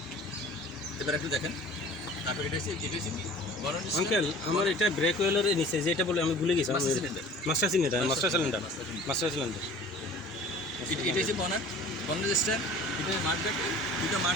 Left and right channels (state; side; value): normal; both; correlation 0.45